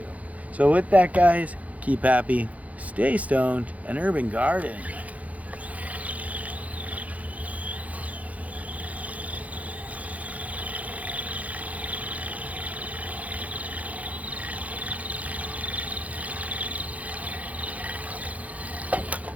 So with that, guys, keep happy, stay stoned, and urban garden.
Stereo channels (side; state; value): left; late; 0.071 ms